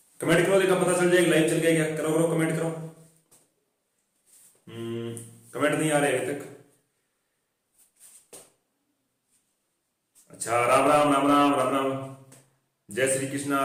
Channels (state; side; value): identical; both; correlation 1.00